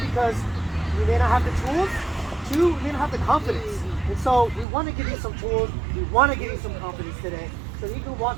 because we may not have the tools. Two, we may not have the confidence. And so we want to give you some tools. We want to give you some confidence today, so that you can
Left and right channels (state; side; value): drops out; left; at 4.7 s